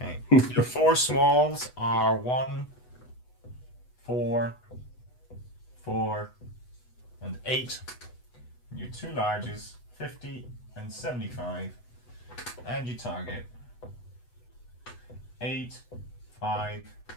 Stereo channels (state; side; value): late; right; 8.1 ms